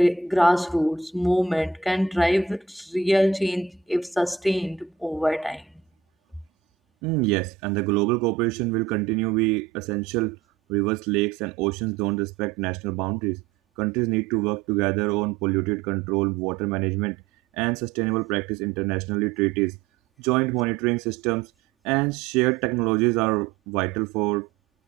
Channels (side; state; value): left; quieter; 6.4 dB